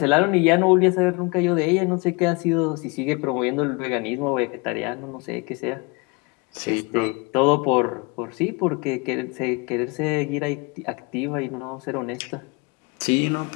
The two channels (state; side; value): quieter; right; 28.8 dB